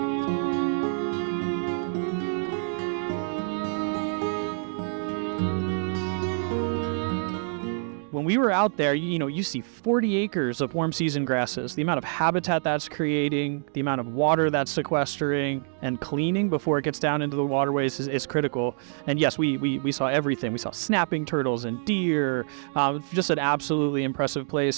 When we were out there, you see 40 acres of warm season grasses. The amount of habitat that's creating, the amount of water that's sequestering and cleaning before it gets down into the waterways is critical. And yes, we saw everything. We saw snapping turtles and deer, just an absolutely impressive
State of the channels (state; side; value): silent; left; digital silence